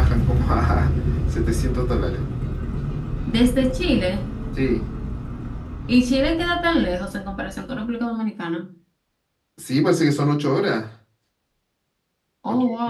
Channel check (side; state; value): both; identical; correlation 1.00